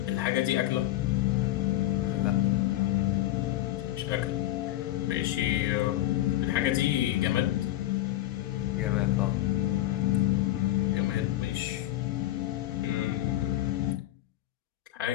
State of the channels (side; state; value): right; quieter; 15.0 dB